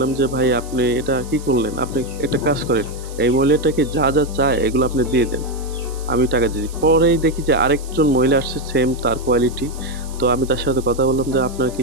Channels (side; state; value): right; noise; hiss, 19 dB below the sound